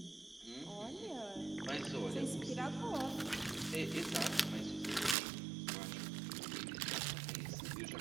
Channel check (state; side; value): drops out; left; at 5.2 s